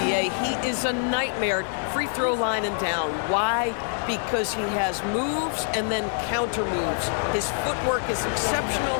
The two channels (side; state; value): right; silent; 61 dB below the other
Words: He is a nightmare, free throw line and down. Why? Because he has moves and then counter moves. His footwork is exceptional,